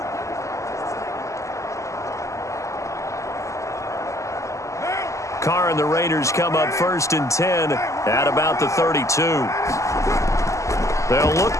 Carr and the Raiders come up 1st and 10 at about the 32. They'll look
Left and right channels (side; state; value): right; late; 0.15 ms